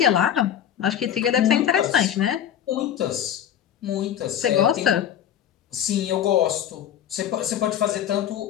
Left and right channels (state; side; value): quieter; right; 10.0 dB